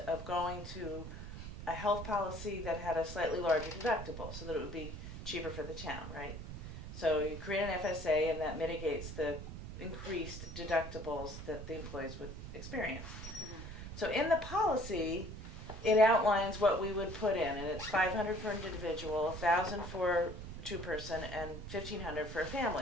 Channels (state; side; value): noise; right; rumble, 9 dB below the sound